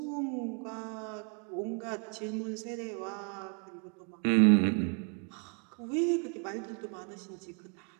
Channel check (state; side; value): quieter; left; 39.8 dB